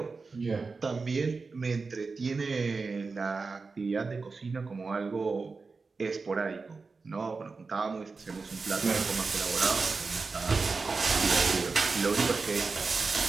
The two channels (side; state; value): left; quieter; 4.3 dB